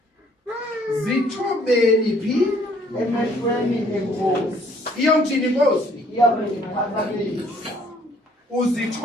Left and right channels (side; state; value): both; normal; correlation 0.62